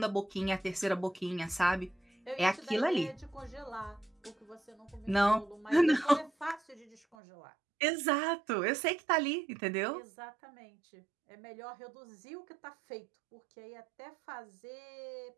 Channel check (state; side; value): drops out; left; at 7.2 s